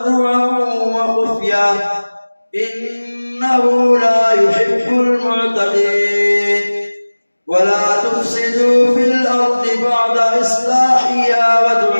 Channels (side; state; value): both; inverted; correlation -1.00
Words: وخفيا إنه لا يحب المعتدين ولا تفسدوا في الأرض بعد إصلاحها